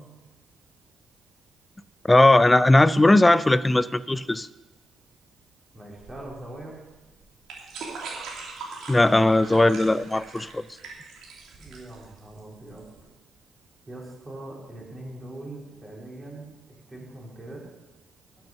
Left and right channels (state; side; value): normal; both; correlation 0.98